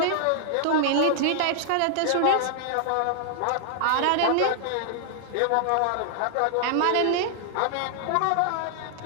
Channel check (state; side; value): different; both; correlation -0.01